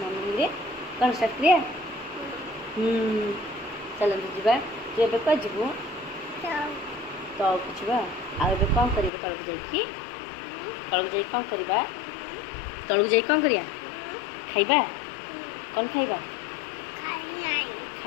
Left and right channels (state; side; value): drops out; right; at 9.1 s